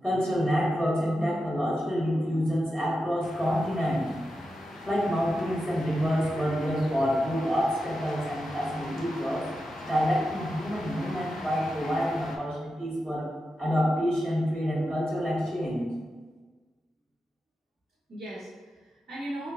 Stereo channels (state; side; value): normal; both; correlation 0.89